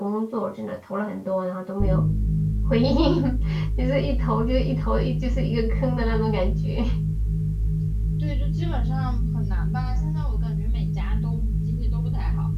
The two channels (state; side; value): identical; both; correlation 1.00